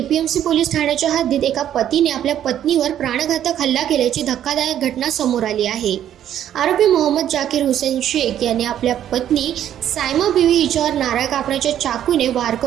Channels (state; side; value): quieter; left; 10.8 dB